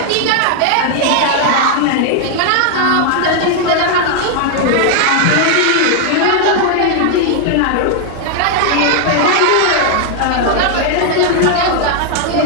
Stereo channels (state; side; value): different; both; correlation 0.00